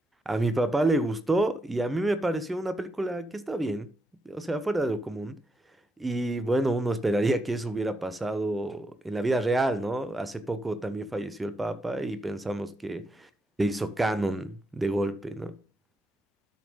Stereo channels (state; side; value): normal; both; correlation 0.82